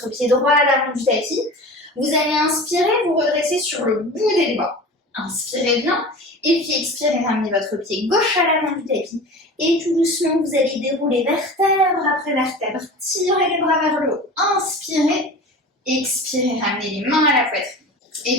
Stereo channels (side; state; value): both; normal; correlation 0.35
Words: pied droit à l'avant du tapis. Vous allez inspirer, vous redresser sur le bout des doigts. Inspirez bien, et puis expirez, ramenez votre pied gauche à l'avant du tapis. Et tout doucement, vous allez dérouler vertèbre après vertèbre. Tirez les bras vers le haut. Inspirez, expirez, ramenez les mains à la poitrine.